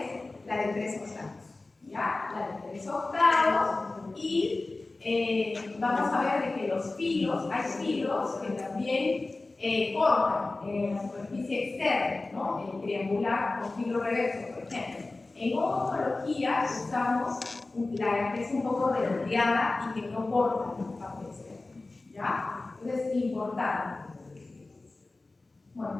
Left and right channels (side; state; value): right; quieter; 3.3 dB